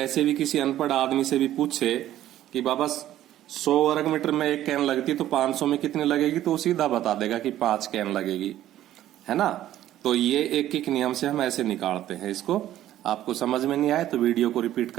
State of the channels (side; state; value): left; quieter; 13.0 dB